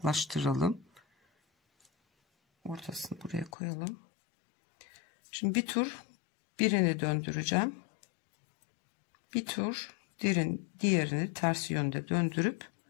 Ortasını buraya koyalım. Şimdi bir tur birini döndüreceğim. Bir tur diğerini ters yönde döndürüp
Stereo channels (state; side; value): drops out; right; at 3.5 s